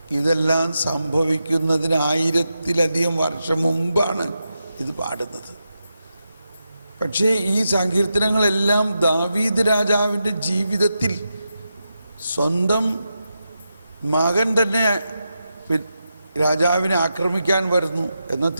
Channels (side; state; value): both; inverted; correlation -0.88